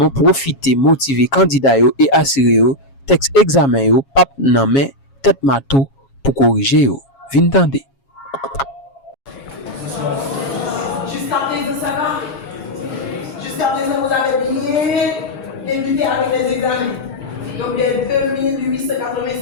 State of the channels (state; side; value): late; right; 7.3 ms